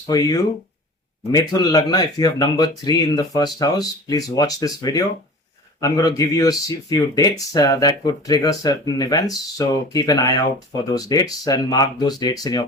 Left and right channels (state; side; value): normal; both; correlation 0.38